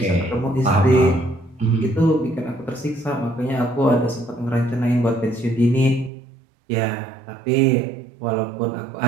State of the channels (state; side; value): drops out; left; at 6.1 s